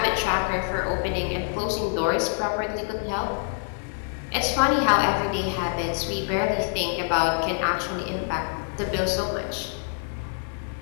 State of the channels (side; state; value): right; silent; 57 dB below the other